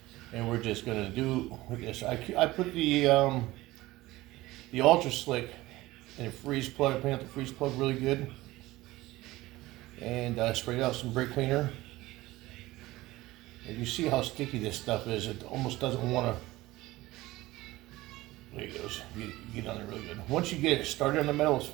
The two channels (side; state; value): left; quieter; 18.4 dB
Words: And we're just gonna do with this. I put the Ultra Slick in a freeze plug. I cleaned out the freeze plug really good, and sprayed out some brake cleaner. And you see how sticky this stuff is. It almost doesn't want to. There it goes. You get on there really good. Once you get it started in the metal, it's